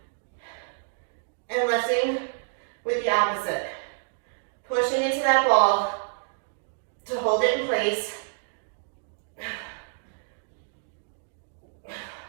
and lifting with the opposite. Pushing into that ball to hold it in place.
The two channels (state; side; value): silent; left; digital silence